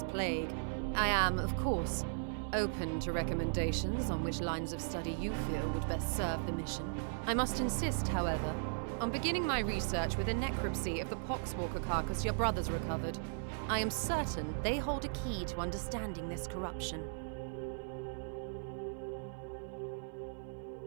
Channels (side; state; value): left; silent; 53 dB below the other